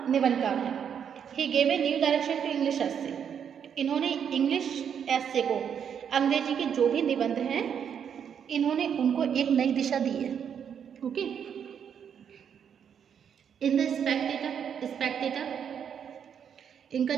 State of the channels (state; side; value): quieter; left; 8.0 dB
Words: निबंधकार है. He gave a new direction to English essay. इन्होंने इंग्लिश एस्से को, अंग्रेजी के जो भी निबंध हैं, इन्होंने उनको एक नई दिशा दी है. ओके, इन द स्पेक्टेटर इनका